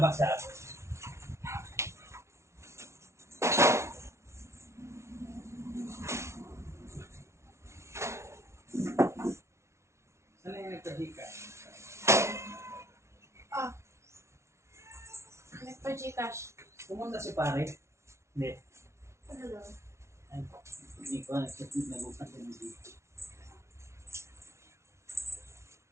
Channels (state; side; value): late; left; 0.13 ms